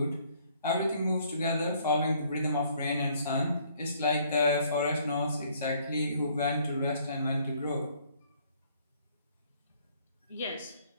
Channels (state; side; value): inverted; both; correlation -0.63